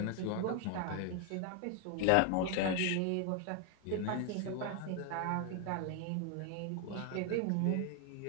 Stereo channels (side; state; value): both; different; correlation 0.01